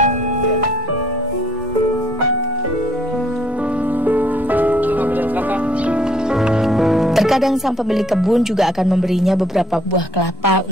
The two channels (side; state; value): both; normal; correlation 0.63